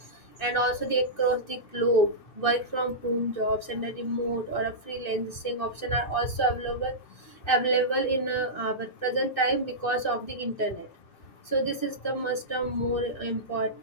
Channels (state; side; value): late; right; 2.6 ms